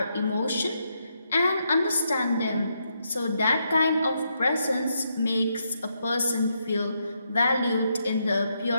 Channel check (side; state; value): both; inverted; correlation -0.80